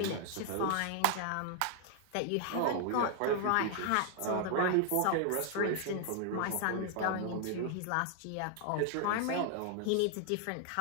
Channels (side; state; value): both; different; correlation 0.00